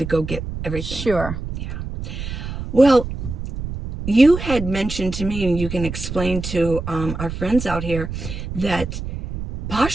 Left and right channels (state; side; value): noise; right; rumble, 7 dB below the sound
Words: go get everything. Sure. Yeah. Well, you had mentioned to me, and you can explain to our friends out here, that